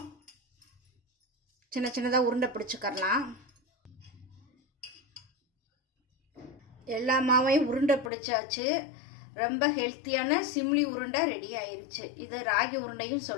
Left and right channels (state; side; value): drops out; right; at 8.1 s